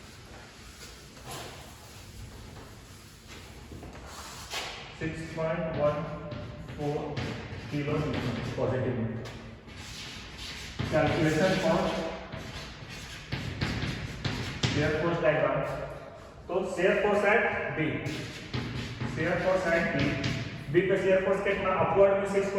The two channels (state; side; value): identical; both; correlation 1.00